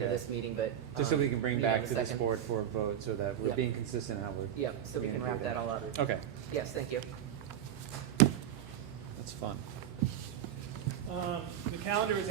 of Okay. this meeting, but. Just so we can bring meet on back the to this second. board for a vote so that we're Yep. being consistent how we're. Yep, so we can gonna do wrap that all up. Okay, Yes, thank you. that's fun. The calendar is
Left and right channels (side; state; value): left; quieter; 10.3 dB